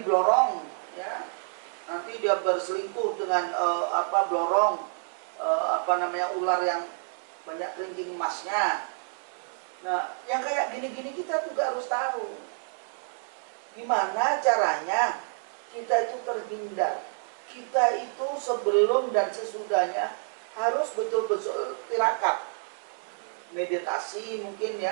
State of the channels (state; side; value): silent; left; digital silence